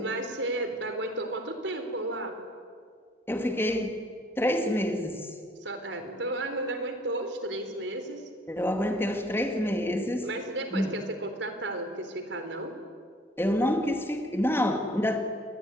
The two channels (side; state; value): both; normal; correlation 0.55